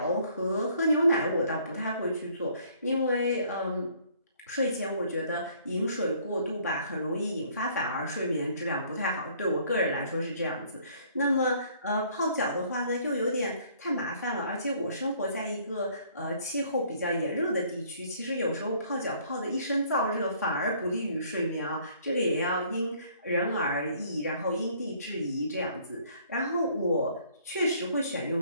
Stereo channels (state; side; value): inverted; both; correlation -0.61